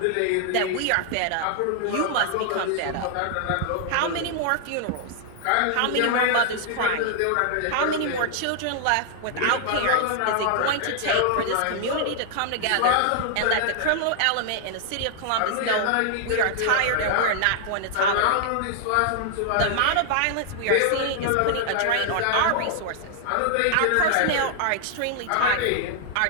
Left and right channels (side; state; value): both; different; correlation -0.01